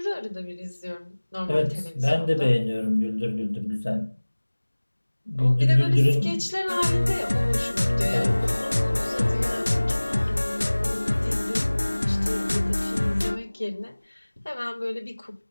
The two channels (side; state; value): both; inverted; correlation -1.00